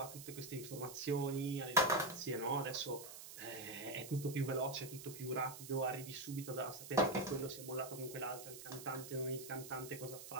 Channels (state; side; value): noise; right; hiss, 12 dB below the sound